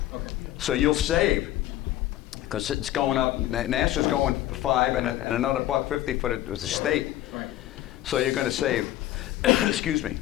Okay. So you'll save, because it's going up. NASA's going for $5 and another $1.50 for the state. Right. So you're going to save, excuse me,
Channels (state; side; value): quieter; right; 14.2 dB